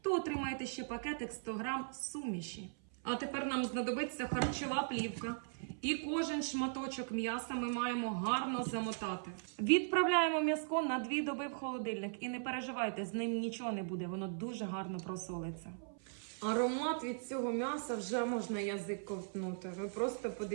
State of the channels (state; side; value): silent; left; 52 dB below the other